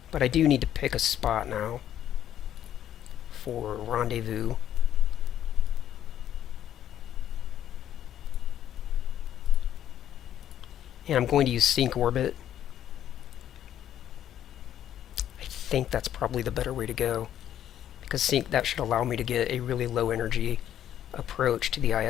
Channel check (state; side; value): quieter; right; 10.8 dB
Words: But I do need to pick a spot now for rendezvous. And I'm going to use sync orbit. I think that's probably the better way to go, because sync, that should allow me to get a really low energy approach to the